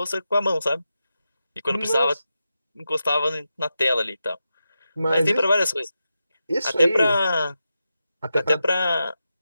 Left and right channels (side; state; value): both; inverted; correlation -0.89